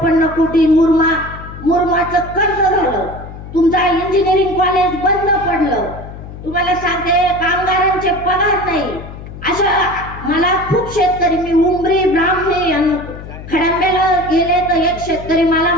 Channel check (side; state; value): left; noise; hum, 13 dB below the sound